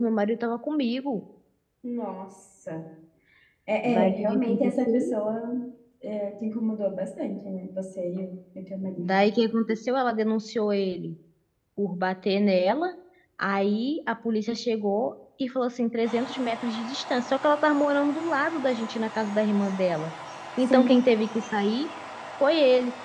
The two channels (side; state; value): both; identical; correlation 1.00